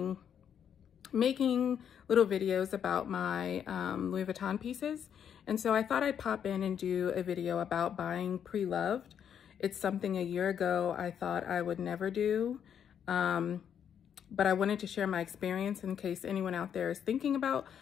making little videos about my Louis Vuitton pieces. And so I thought I'd pop in and do a video about buying pre-loved. It's something a year ago I thought I would never do, but I wanted to share my experience in case anyone out there is thinking about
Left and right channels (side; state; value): right; quieter; 8.5 dB